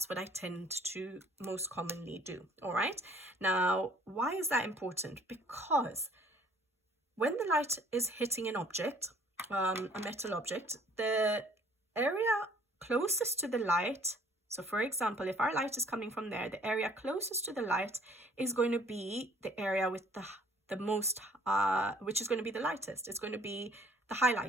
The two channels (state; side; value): normal; both; correlation 0.56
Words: what I tend to most commonly do. All right. Now, why is that important? Because when the light is hitting an object, a metal object, the area closest to the light, so for example, if our light is coming from there, the area closest to the light is going to be the area with the most, which is going to be the lightest. It's going to be the